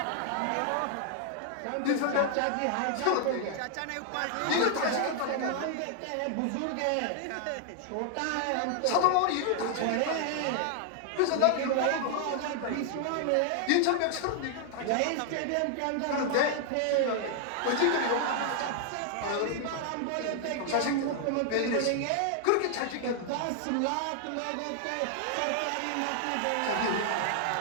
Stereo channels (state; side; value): different; both; correlation 0.00